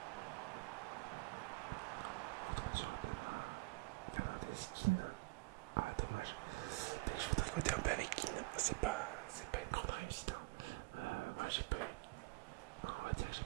Retourne sur Adama. Fernandes, Keane. Ah, dommage. Dès que je veux tricoter un peu avec Keane, c'est pas une grande réussite. Voilà, j'ai pas eu. Non, on va dire que j'ai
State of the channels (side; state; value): left; quieter; 25.0 dB